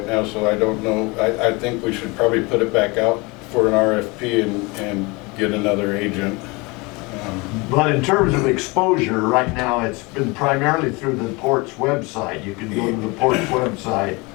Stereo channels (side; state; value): right; quieter; 26.1 dB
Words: now, so I don't know. I think we should probably put it back out for an RFP and get another agent. but in terms of exposure, right now, it's been primarily through the port's website. You can go to the port's website.